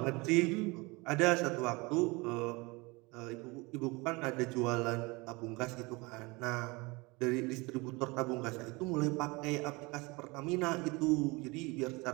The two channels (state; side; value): quieter; left; 25.5 dB